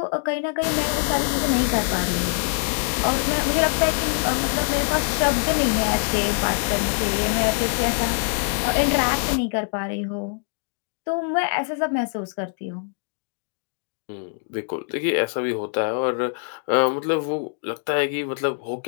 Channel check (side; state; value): right; silent; 63 dB below the other